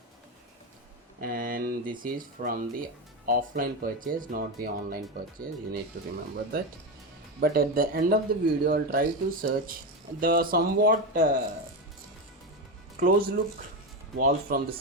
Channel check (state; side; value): normal; both; correlation 0.14